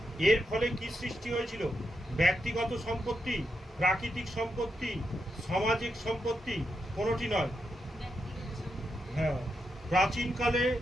এর ফলে কি সৃষ্টি হয়েছিল? ব্যক্তিগত সম্পত্তি, প্রাকৃতিক সম্পত্তি, সামাজিক সম্পত্তি, কোনটি নয়। হ্যাঁ। প্রাচীনকালে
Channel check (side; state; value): both; normal; correlation 0.84